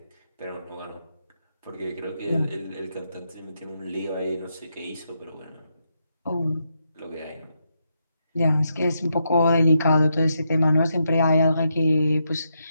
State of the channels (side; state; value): both; inverted; correlation -0.82